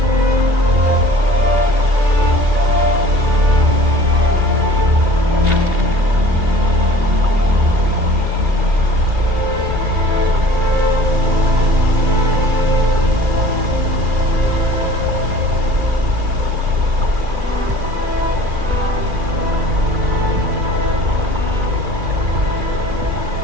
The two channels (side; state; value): left; late; 2.8 ms